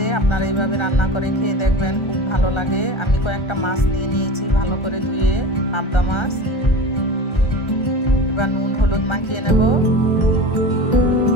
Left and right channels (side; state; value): right; late; 1.3 ms